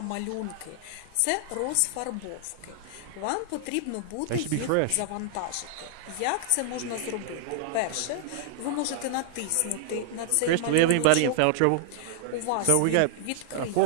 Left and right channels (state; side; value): different; both; correlation 0.00